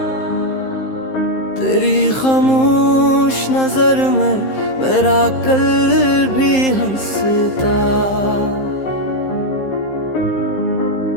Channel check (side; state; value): right; late; 15 ms